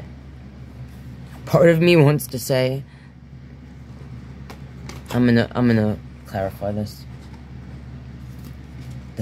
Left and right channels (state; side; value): identical; both; correlation 1.00